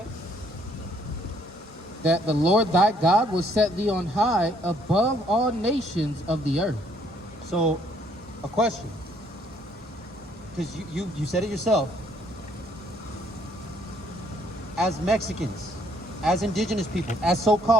That the Lord thy God will set thee on high above all nations of the earth. So, a question, because you said it yourself. As Mexicans, as indigenous people, as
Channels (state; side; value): normal; both; correlation 0.66